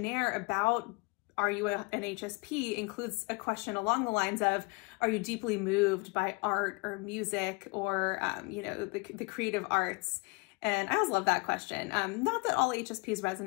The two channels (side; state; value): right; quieter; 27.9 dB